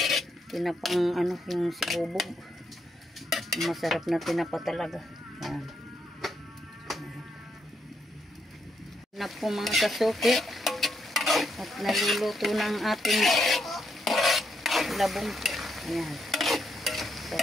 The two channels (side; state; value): both; normal; correlation 0.79